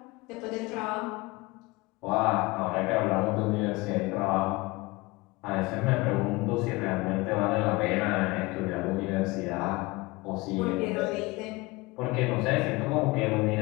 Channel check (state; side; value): quieter; right; 22.7 dB